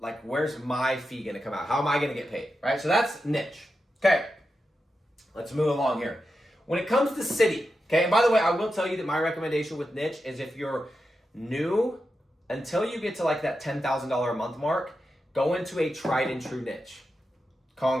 Like, where's my fee going to come out? How am I going to get paid, right? So that's niche. Okay, let's move along here. When it comes to city, okay, and by the way, I will tell you that my recommendation with niche is if you're new, until you get to like that $10,000 a month mark, go into a tried and true niche.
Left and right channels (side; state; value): both; normal; correlation 0.89